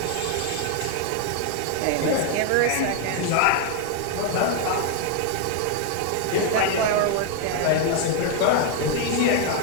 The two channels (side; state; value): both; different; correlation 0.01